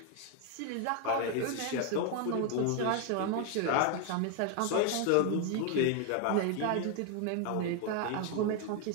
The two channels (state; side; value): different; both; correlation 0.01